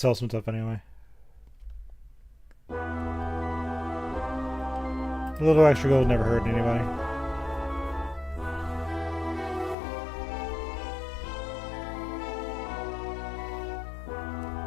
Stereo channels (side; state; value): right; drops out; at 9.8 s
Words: some stuff anyway. A little extra gold never hurt anybody.